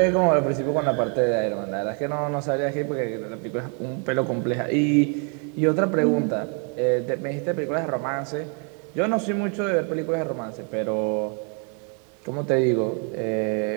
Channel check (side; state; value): left; quieter; 38.8 dB